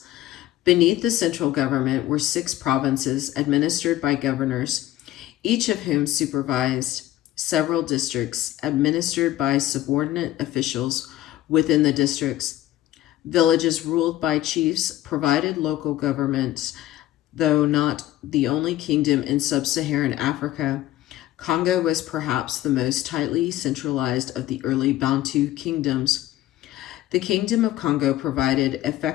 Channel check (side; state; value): right; quieter; 14.4 dB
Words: Beneath the central government were 6 provinces administered by governors, each of whom supervised several districts administered by subordinate officials within the districts. Villages ruled by chiefs provided local governments, though not the only kingdom in sub-Saharan Africa. Congo was perhaps the most tightly centralized of the early Bantu kingdoms. The Kingdom of Congo provided